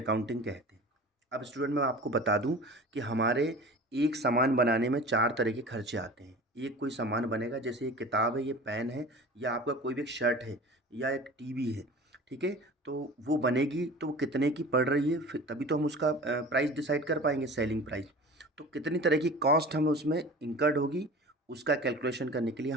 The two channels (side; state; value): both; normal; correlation 0.38